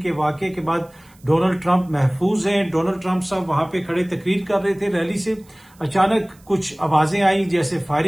के वाकये के बाद डोनाल्ड ट्रंप महफूज हैं। डोनाल्ड ट्रंप साहब वहां पे खड़े तकरीर कर रहे थे। रैली से अचानक कुछ आवाजें आई, जैसे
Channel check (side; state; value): right; noise; hiss, 30 dB below the sound